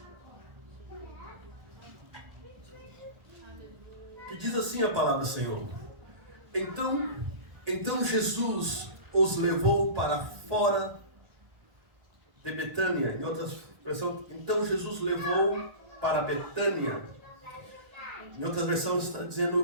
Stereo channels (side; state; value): left; late; 1.4 ms